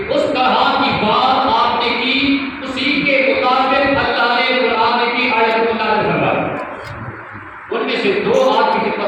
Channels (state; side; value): identical; both; correlation 1.00